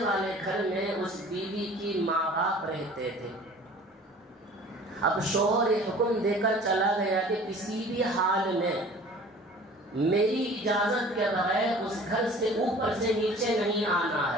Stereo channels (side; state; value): both; normal; correlation 0.46